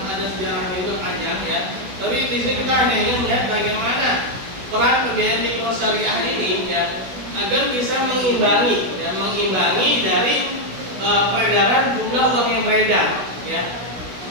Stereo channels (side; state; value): left; late; 16 ms